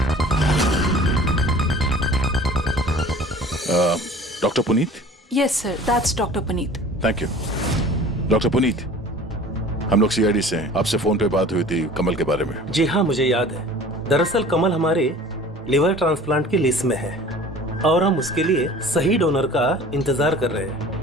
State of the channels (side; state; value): both; normal; correlation 0.45